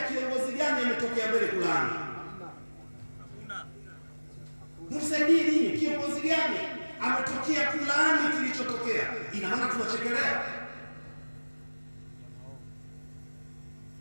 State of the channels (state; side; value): inverted; both; correlation -1.00